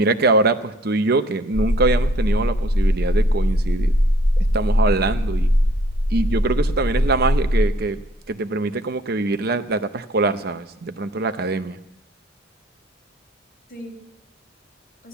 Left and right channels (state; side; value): normal; both; correlation 0.57